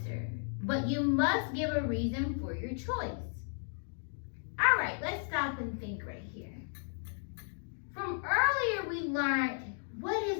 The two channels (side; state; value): right; silent; digital silence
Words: but you must give a reason for your choice. All right, let's stop and think right here. From earlier, we learned what